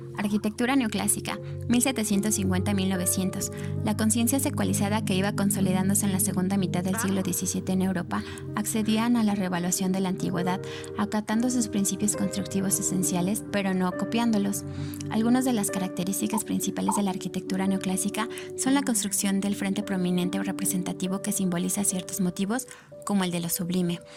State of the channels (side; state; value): both; identical; correlation 1.00